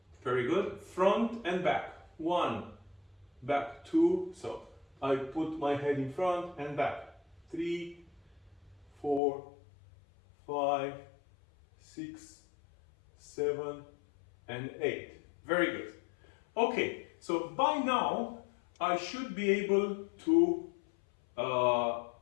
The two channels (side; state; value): right; drops out; at 9.2 s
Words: Very good. Front and back. 1, back, 2. So I put my head in front and back. 3, 4, 5, 6, 7, and 8. Very good. Okay, so by now I should be able to